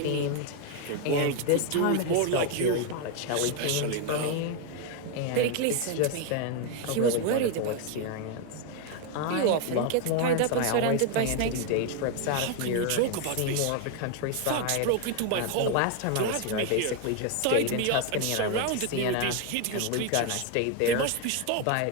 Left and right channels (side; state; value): both; different; correlation 0.01